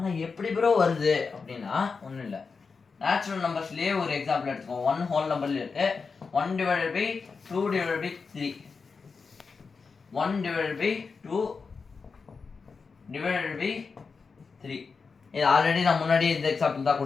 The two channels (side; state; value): right; quieter; 4.9 dB